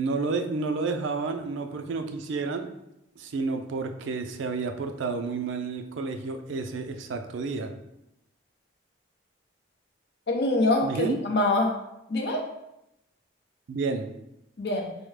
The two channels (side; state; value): both; normal; correlation 0.25